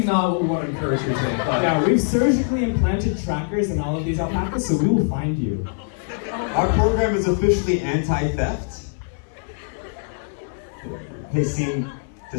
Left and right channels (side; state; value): right; silent; digital silence